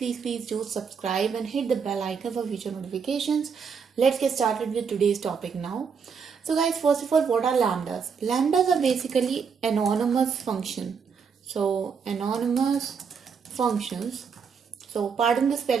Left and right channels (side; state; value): left; quieter; 6.1 dB